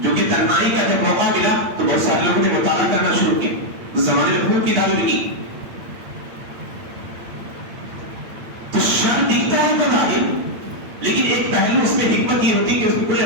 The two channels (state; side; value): late; left; 8.9 ms